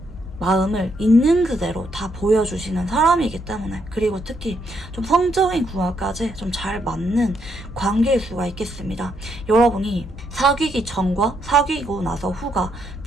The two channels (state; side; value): normal; both; correlation 0.76